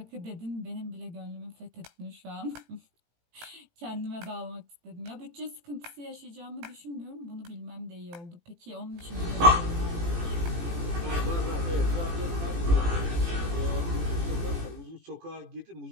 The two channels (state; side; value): late; left; 18 ms